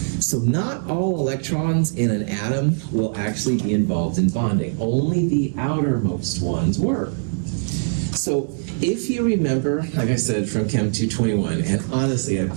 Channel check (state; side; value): silent; left; digital silence